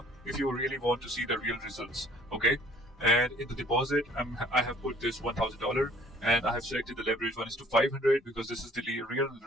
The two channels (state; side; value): normal; both; correlation 0.56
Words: if you really want to see the real results. Okay. And in the deposit, I have put this $1,000, and I have selected the leverage 1:500 because this is the real